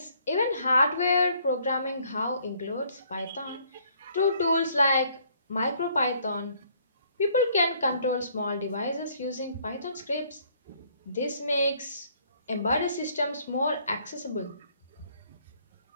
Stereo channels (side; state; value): both; inverted; correlation -0.64